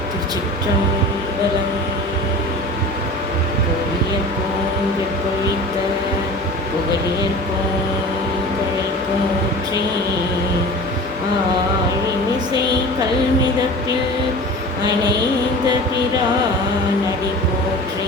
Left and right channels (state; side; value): normal; both; correlation 0.37